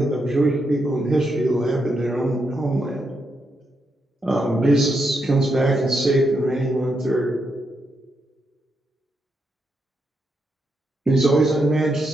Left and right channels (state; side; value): normal; both; correlation 0.82